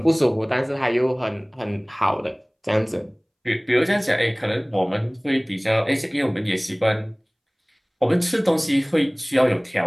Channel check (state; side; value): identical; both; correlation 1.00